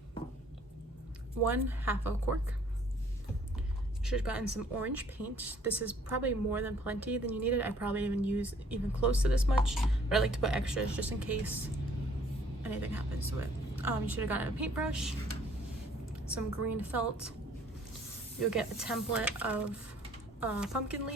1 half a cork. You should have gotten some orange paint. This is probably more than plenty than you needed. I probably even use even close to this much, but I like to put extras just in case anything happens to it. You should have gotten a paintbrush, some green felt. You'll get a template of pumpkin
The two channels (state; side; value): normal; both; correlation 0.59